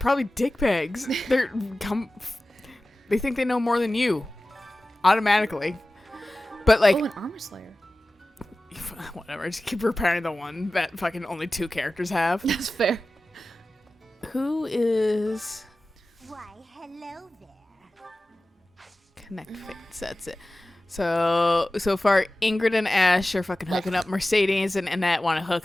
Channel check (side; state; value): both; normal; correlation 0.96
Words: dickbags. They think they know more than you, automatically. But like, an Armor Slayer. Whatever. Just keep repairing the one that fucking only 2 characters have. That's fair. Who is? Why, hello there. Connect Fates. That's it. So far, Ingrid and Ash are fucking hooking up. Mercedes and Annette want to